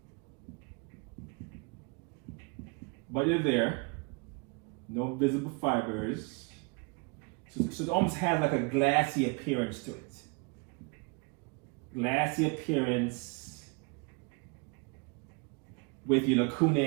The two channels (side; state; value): left; quieter; 32.3 dB